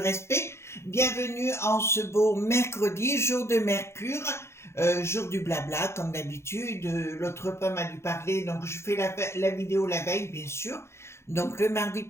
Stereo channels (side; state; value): right; late; 0.13 ms